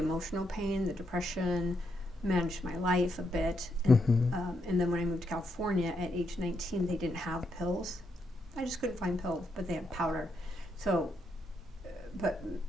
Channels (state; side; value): normal; both; correlation 0.79